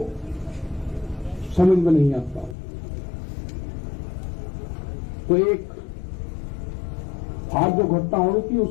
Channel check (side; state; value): right; drops out; at 2.6 s